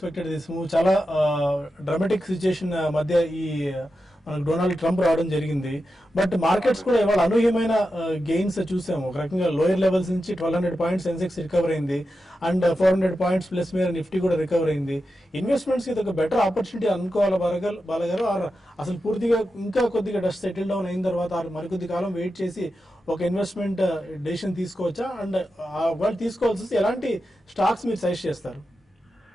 this move. చాలా డ్రామాటిక్ సిచ్యుయేషన్ మధ్య ఈ మనకు డొనాల్డ్ ట్రంప్ రావడం జరిగింది. బట్ మార్కెట్స్ కూడా ఇవాళ అనూహ్యమైన గెయిన్స్ చూసాము. ఒక రకంగా లోయర్ లెవెల్స్ నుంచి 1200 పాయింట్స్ సెన్సెక్స్ రికవర్ అయింది అండ్ 400 పాయింట్స్ ప్లస్ మీద నిఫ్టీ కూడా రికవర్ అయింది. ఇన్వెస్ట్మెంట్స్ ఇది ఒక బెటర్ ఆపర్చునిటీ అనుకోవాలి బాలగారు. అసలు పూర్తిగా ఇంకా కొద్దిగా డస్ట్ సెటిల్ డౌన్ అయిన తర్వాత మరికొద్ది కాలం వెయిట్ చేసి ఒక ఇన్వెస్ట్మెంట్ డెసిషన్ తీసుకోవచ్చా? అండ్ వాళ్ళు తీసుకోవాల్సి ఎలాంటి స్టాక్స్ మీరు సజెస్ట్ చేస్తారు?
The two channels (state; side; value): normal; both; correlation 0.90